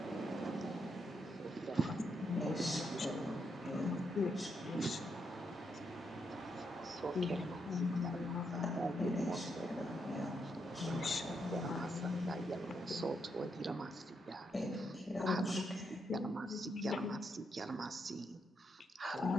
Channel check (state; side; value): normal; both; correlation 0.80